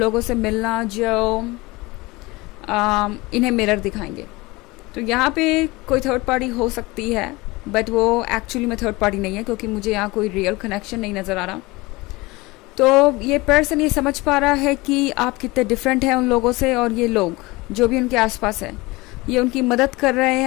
से मिलना जो इन्हें मिरर दिखाएंगे। तो यहाँ पे कोई थर्ड पार्टी हो सकती है, बट वो एक्चुअली में थर्ड पार्टी नहीं है क्योंकि मुझे यहाँ कोई रियल कनेक्शन नहीं नज़र आ रहा। तो ये पर्सन ये समझ पा रहा है कि आप कितने डिफरेंट हैं उन लोगों से, और ये लोग जो भी उनके आसपास है ये उनकी मदद कर रहे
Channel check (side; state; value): right; quieter; 22.4 dB